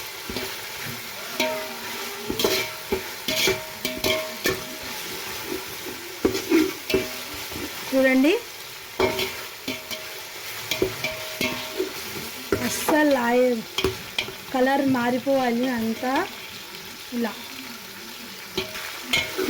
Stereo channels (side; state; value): both; identical; correlation 1.00